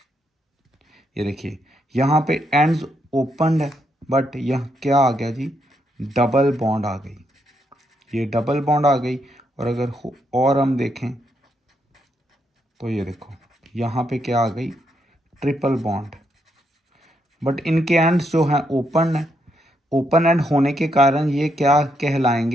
ये देखिए यहाँ पे एंड्स ओपन है, बट यह क्या आ गया जी, डबल बॉन्ड आ गई, ये डबल बॉन्ड आ गई। और अगर और हम देखें तो ये देखो यहाँ पे क्या आ गई, ट्रिपल बॉन्ड। बट इनके एंड्स जो हैं ओपन है, ओपन एंड होने के कारण ये क्या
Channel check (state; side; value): normal; both; correlation 0.78